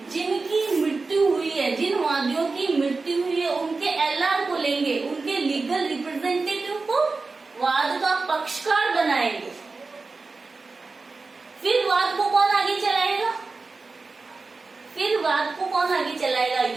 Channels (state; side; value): quieter; left; 3.9 dB